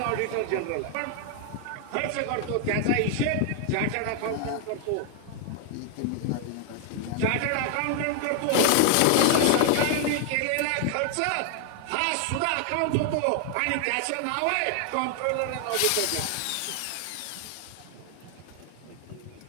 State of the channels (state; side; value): different; both; correlation 0.00